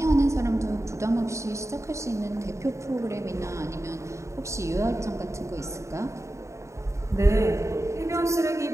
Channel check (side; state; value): left; late; 0.14 ms